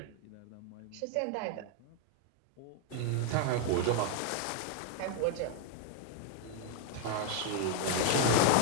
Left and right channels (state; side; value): different; both; correlation 0.00